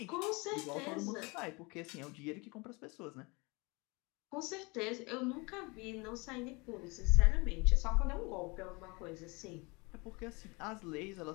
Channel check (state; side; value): quieter; right; 27.3 dB